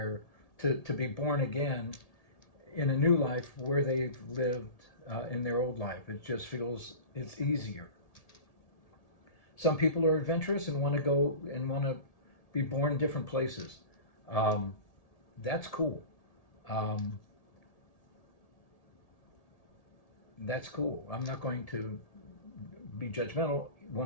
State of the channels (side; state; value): right; late; 1.7 ms